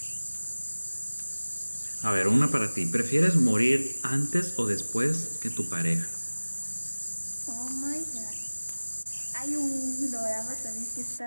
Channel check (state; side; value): inverted; both; correlation -1.00